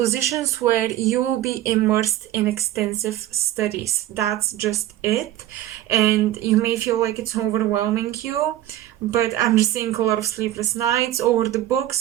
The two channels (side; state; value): left; quieter; 13.9 dB